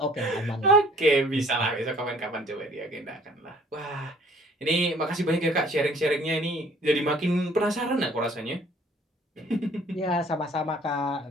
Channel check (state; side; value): normal; both; correlation 0.56